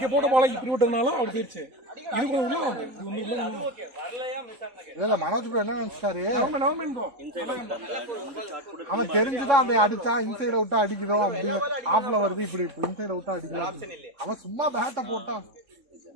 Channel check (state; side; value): late; left; 3.6 ms